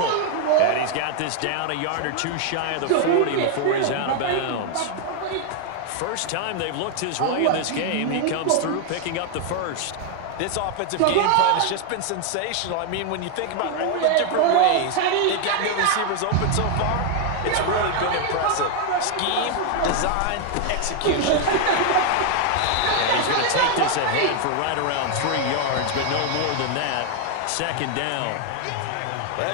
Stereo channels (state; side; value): different; both; correlation 0.01